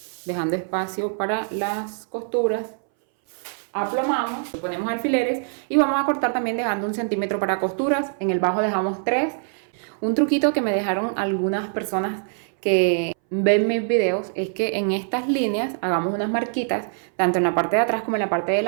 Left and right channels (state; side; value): silent; left; 61 dB below the other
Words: dejando espacio para las costuras. Aplomamos, ponemos alfileres y vamos a cortar también dejando 1 centímetro para costuras. En el bajo dejamos 3. Un truquito que me dejaron algunas personas que ven mis videos es que en estas líneas hagamos unas marquitas tanto en la parte de atrás como en la parte